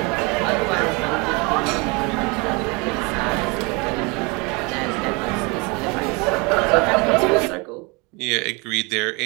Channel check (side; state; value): left; quieter; 28.6 dB